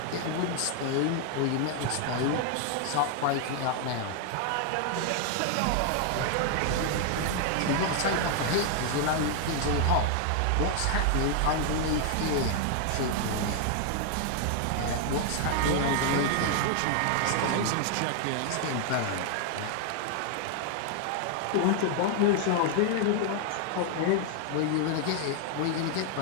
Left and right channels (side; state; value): both; different; correlation 0.00